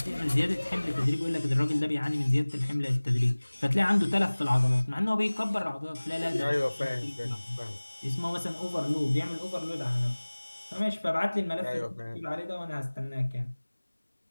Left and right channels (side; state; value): both; inverted; correlation -1.00